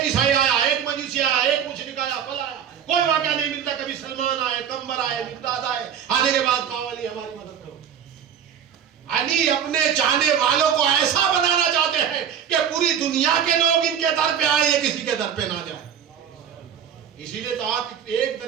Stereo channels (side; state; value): left; quieter; 8.5 dB